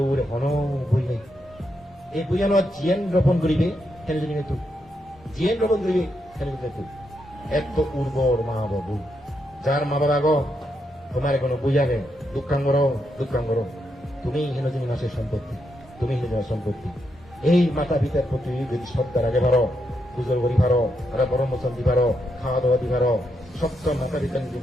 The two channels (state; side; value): normal; both; correlation 0.81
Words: ওরে কোনো বই নেই এই বইয়ানো জিয়ান রোপণ করিবে খেলে জানি তুই জিয়ান রোপণ করিবে খেলে তুই এত উর্বর মা বাবু যার মা বাবা গো তোমার কোনো বই আগে দুঃখাঙ্গর তুমি হেন যিনি মাসের সম্পত্তি তুমি হেন সম্পত্তি এই মাতা পিতার প্রতি যদি শ্রদ্ধা রাখে পারো পুজোর করি পারো তারা বড় মোচন দি পারো খাওয়া দাওয়া দি পারো সত্য মাতা পিতা যদি